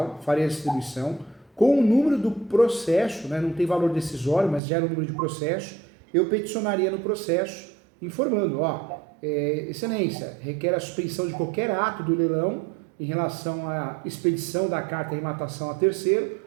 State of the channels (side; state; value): left; drops out; at 4.6 s